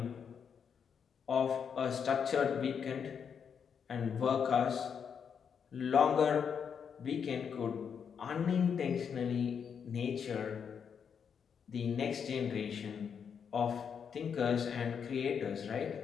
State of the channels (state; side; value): quieter; right; 7.1 dB